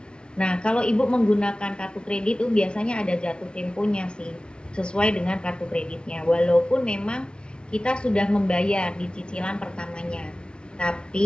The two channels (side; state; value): right; late; 0.056 ms